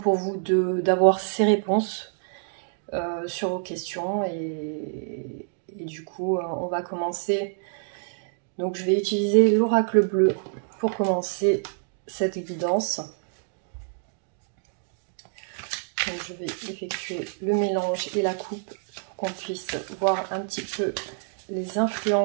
vous d'avoir ces réponses sur vos questions et du coup on va commencer. Donc je vais utiliser l'oracle bleu pour commencer cette guidance. Donc, je vais effectuer le mélange et la coupe pour qu'on puisse voir un petit peu les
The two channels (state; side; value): silent; left; digital silence